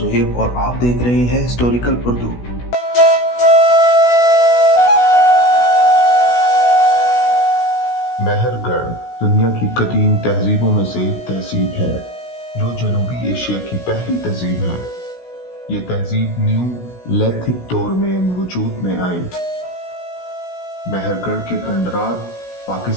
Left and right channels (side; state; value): right; late; 16 ms